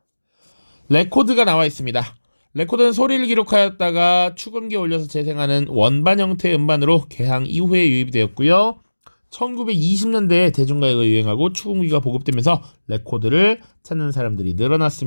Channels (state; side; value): inverted; both; correlation -1.00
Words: 레코드가 나와 있습니다. 레코드는 소리를 기록하였다가 축음기에 올려서 재생하는 원반 형태의 음반으로 개항 이후에 유입되었고요. 1920년대에 대중가요가 유행하고 축음기가 보급되면서 레코드를 찾는 사람들이